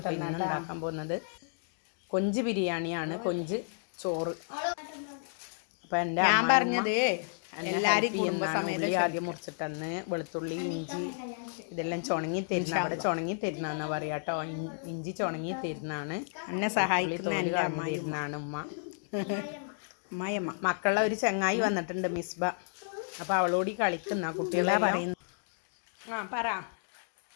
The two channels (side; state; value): right; silent; digital silence